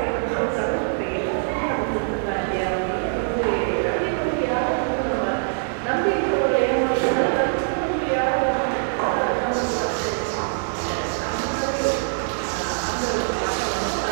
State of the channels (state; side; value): silent; left; digital silence